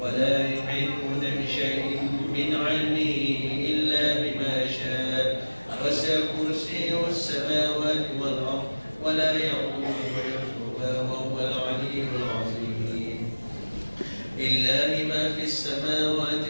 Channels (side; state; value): both; inverted; correlation -1.00